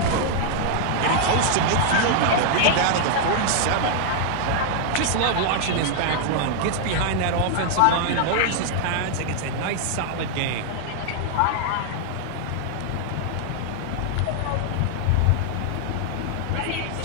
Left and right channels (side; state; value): both; different; correlation 0.00